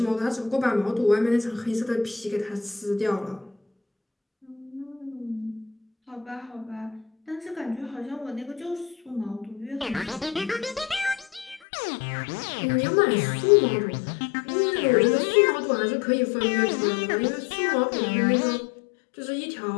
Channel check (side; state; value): right; drops out; at 11.6 s